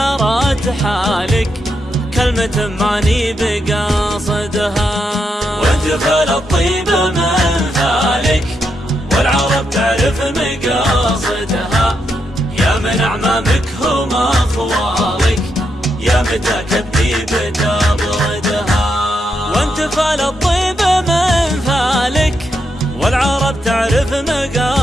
حالك كلمة ماني بقاصدها. وانت فالطيب من ذلك والعرب تعرف مقاصدها، يا من أعمامك هم أخوالك يا متى كبدي بتبردها. وانت فالطيب من ذلك والعرب تعرف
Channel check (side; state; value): both; normal; correlation 0.82